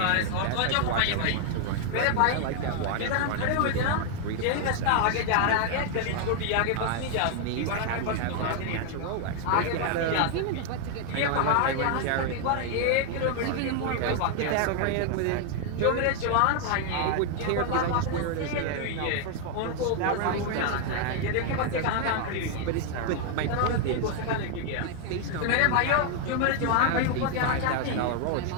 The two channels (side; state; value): both; different; correlation 0.00